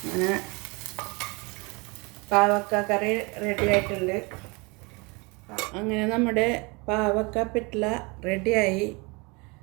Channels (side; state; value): left; quieter; 28.1 dB